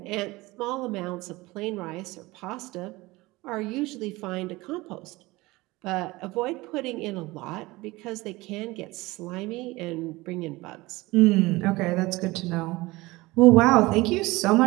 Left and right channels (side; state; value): left; quieter; 21.0 dB